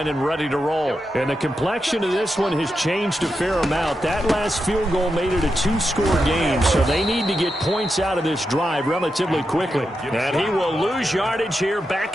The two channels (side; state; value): both; normal; correlation 0.87